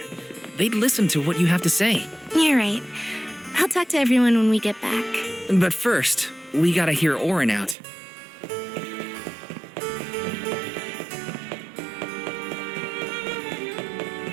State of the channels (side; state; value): left; drops out; at 7.8 s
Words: They'd listen to what you have to say. You're right. I'll talk to everyone when we get back. But first, we gotta hear Orin out.